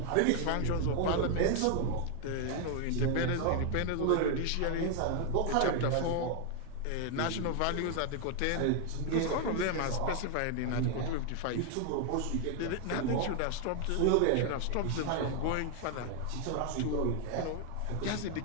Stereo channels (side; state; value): both; different; correlation 0.00